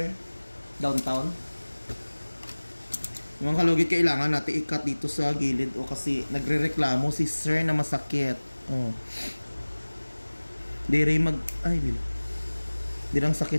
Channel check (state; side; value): inverted; both; correlation -1.00